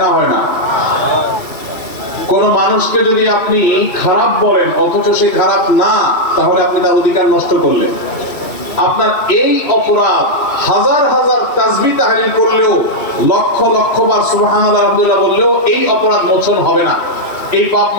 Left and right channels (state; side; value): late; right; 2.6 ms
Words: না? হয় না? কোন মানুষকে যদি আপনি খারাপ বলেন অথচ সে খারাপ না, তাহলে আপনি তার অধিকার নষ্ট করলেন। আপনার এই অপরাধ হাজার হাজার তাসবিহ তাহলিল করলেও, লক্ষ লক্ষ বার সুবহানাল্লাহ আলহামদুলিল্লাহ বললেও এই অপরাধ মোচন হবে না, এই পাপ